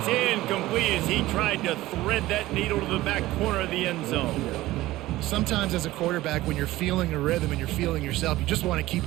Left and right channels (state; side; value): quieter; left; 17.1 dB